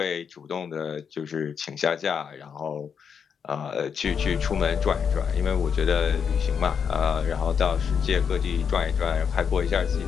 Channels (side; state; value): right; quieter; 6.9 dB